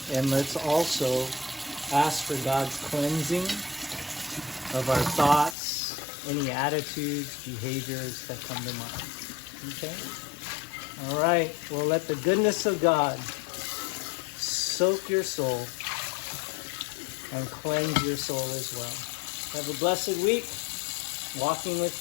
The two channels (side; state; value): right; drops out; at 5.6 s